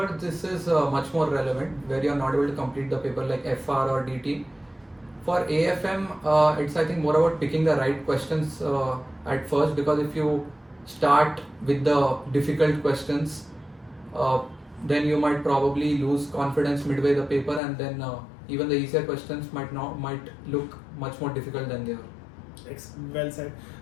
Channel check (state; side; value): drops out; right; at 17.6 s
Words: this is much more relevant, where you're not able to complete the paper like FR or DT. For AFM, it's I think more about picking the right questions at first, because if you start with the difficult questions, then you might probably lose confidence midway the paper, and then even the easier questions might look much more difficult than they are. Well said.